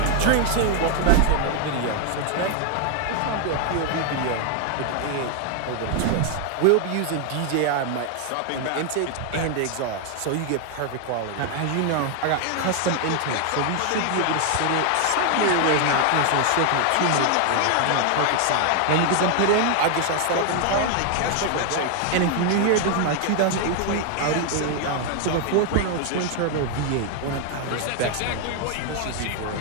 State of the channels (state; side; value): different; both; correlation 0.00